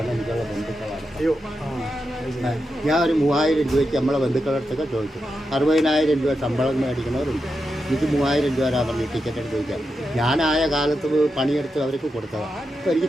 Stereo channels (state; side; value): normal; both; correlation 0.87